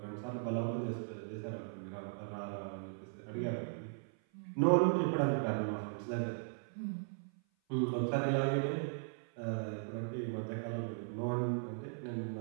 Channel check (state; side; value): silent; left; 52 dB below the other